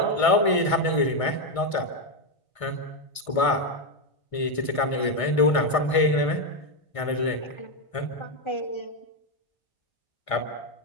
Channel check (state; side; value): late; right; 1.6 ms